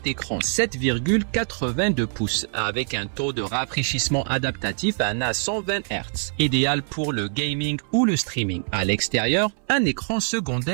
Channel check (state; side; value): silent; left; 63 dB below the other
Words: écran 7,82 pouces avec un taux de rafraîchissement adaptatif à 120 Hz, idéal pour le gaming ou le streaming. À l'extérieur, un écran